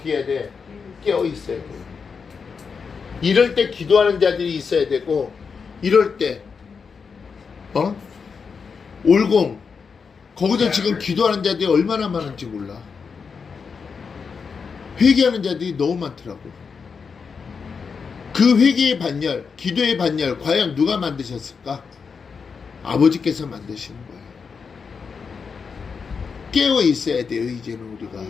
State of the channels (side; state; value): right; quieter; 5.6 dB